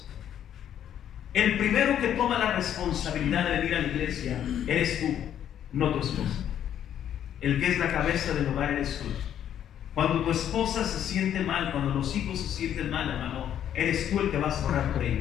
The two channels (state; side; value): quieter; right; 10.1 dB